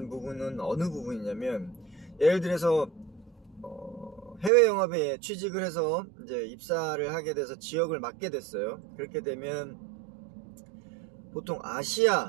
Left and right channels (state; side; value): drops out; left; at 4.5 s